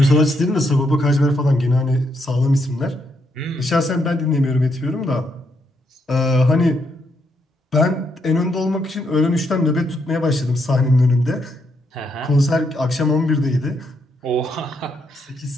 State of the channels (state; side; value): normal; both; correlation 0.77